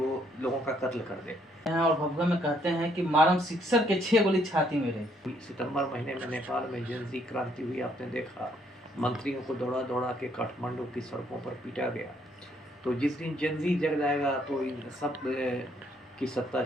लोगों का कत्ल कर दे। और भगवा में कहते हैं कि मारम सिक्सर के 6 गोली छाती में रही। सितंबर महीने में नेपाल में जेनजी क्रांति हुई, आपने देखा। मंत्रियों को दौड़ा दौड़ा के काठमांडू की सड़कों पर पीटा गया। तो जिस दिन जेनजी जग जाएगा तो इन सब की सत्ता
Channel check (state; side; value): normal; both; correlation 0.69